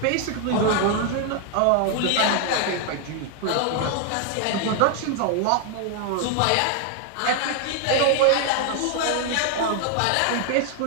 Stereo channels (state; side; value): different; both; correlation 0.01